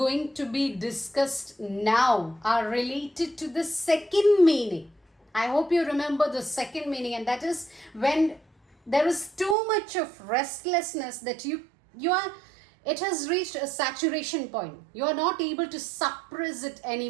to be discussed now are related to the second meaning. I hope you remember the second meaning, and that is when there is too much of restlessness that it has reached a saturation point. You are not able to suppress it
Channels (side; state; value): left; drops out; at 9.6 s